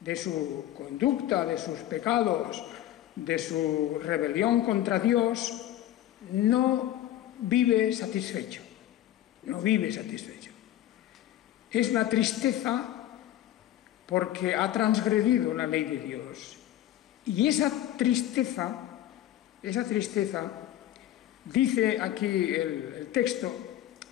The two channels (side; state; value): right; quieter; 12.9 dB